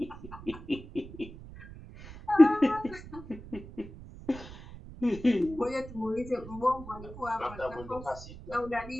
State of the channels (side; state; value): right; noise; rumble, 15 dB below the sound